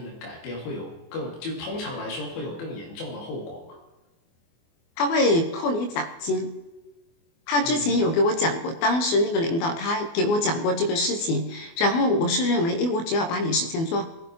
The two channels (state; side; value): late; right; 24 ms